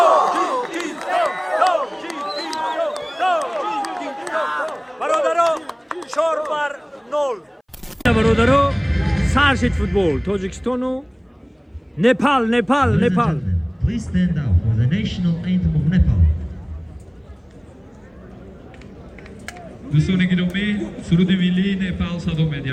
برادرها 4 بر 0 برادرها سرشید فوتبال تاجیکستان و نپال Please stand up for the national anthem of Nepal. دوستان گرامی سرود ملی نپال صدا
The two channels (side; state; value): both; identical; correlation 1.00